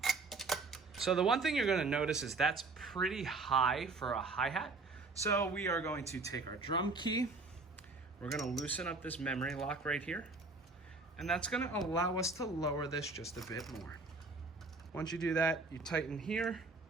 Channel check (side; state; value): left; quieter; 3.7 dB